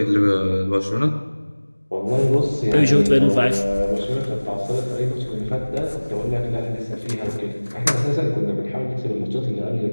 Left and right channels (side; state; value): both; inverted; correlation -1.00